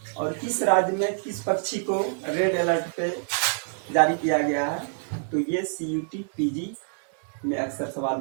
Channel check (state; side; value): silent; left; digital silence